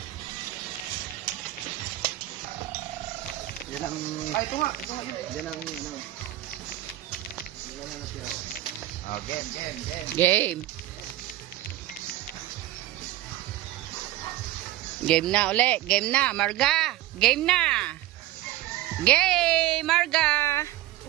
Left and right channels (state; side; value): quieter; left; 15.3 dB